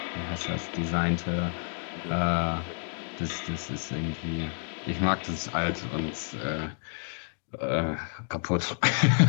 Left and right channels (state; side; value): silent; right; 58 dB below the other